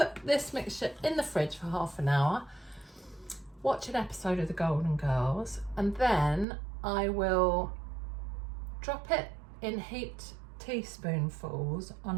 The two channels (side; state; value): left; drops out; at 6.5 s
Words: this mixture in the fridge for half an hour, watch an episode of the Golden Girls, and then I will drop it in heaped teaspoonfuls on